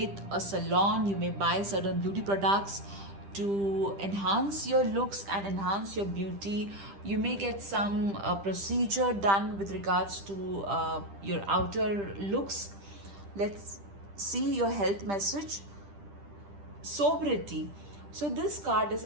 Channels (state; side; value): late; left; 10 ms